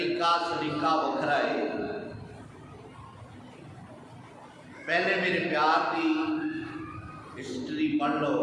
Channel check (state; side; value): identical; both; correlation 1.00